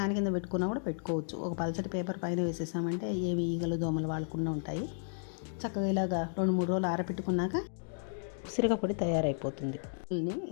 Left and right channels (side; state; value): right; silent; digital silence